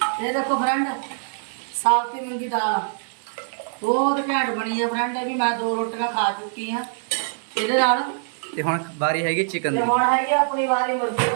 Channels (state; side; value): silent; left; 63 dB below the other